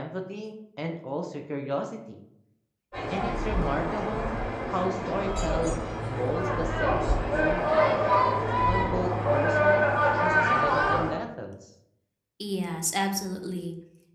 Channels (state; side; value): identical; both; correlation 1.00